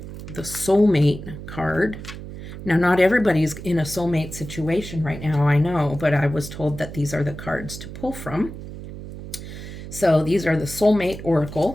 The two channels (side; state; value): right; noise; hum, 11 dB below the sound